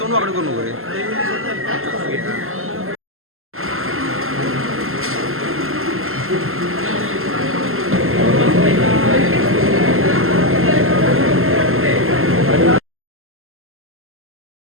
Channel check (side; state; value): left; late; 0.62 ms